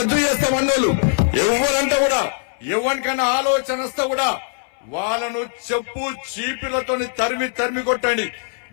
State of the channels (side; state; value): right; silent; 61 dB below the other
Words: చేస్తామన్నోళ్ళు ఎవరంటే కూడా ఎవరికైనా ఆలోచన వస్తే కూడా వాళ్ళను చెప్పు చీపిలతో తరిమి కొట్టండి.